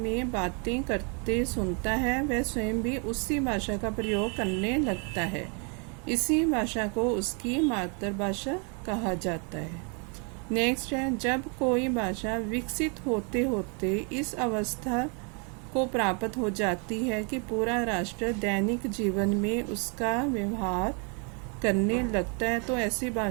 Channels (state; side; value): quieter; left; 36.6 dB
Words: बातें करते सुनता है वह स्वयं भी उसी भाषा का प्रयोग करने लगता है। इसी भाषा को उसकी मातृभाषा कहा जाता है। नेक्स्ट है जब कोई भाषा विकसित होते होते इस अवस्था को प्राप्त हो जाती है कि पूरा राष्ट्र दैनिक जीवन में उसका व्यवहार करने लगता है, तो ऐसी